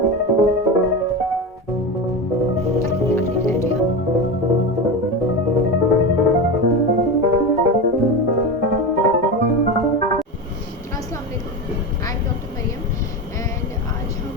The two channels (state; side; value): normal; both; correlation 0.21